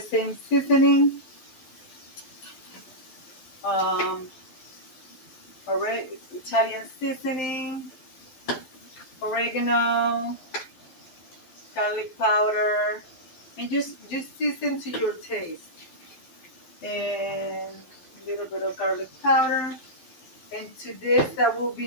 seasoning. Italian seasoning, oregano, garlic powder, and just season to your taste. And a little bit of garlic powder. And to this, I will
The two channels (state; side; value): late; right; 12 ms